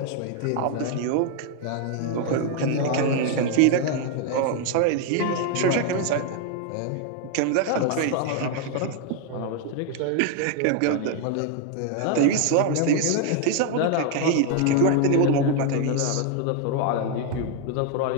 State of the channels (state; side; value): different; both; correlation 0.00